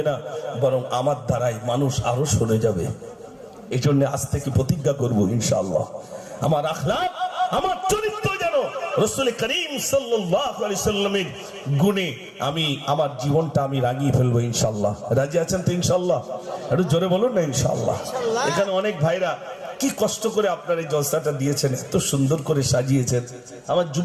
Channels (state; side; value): identical; both; correlation 1.00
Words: না, বরং আমার দ্বারাই মানুষ আরো সরে যাবে। এই জন্য আজ থেকে প্রতিজ্ঞা করব ইনশাআল্লাহ, আমার আখলাক আমার চরিত্র যেন রাসূল করিম সাল্লাল্লাহু আলাইহি সাল্লামের গুণে আমি আমার জীবনটা আমি রাঙিয়ে ফেলবো ইনশাআল্লাহ। রাজি আছেন তো ইনশাআল্লাহ? একটু জোরে বলুন না ইনশাআল্লাহ। এখানে অনেক ভাইরা কি কষ্ট করে আপনার এই জলসাটা দিয়েছেন, এত সুন্দর করে সাজিয়েছেন। আমার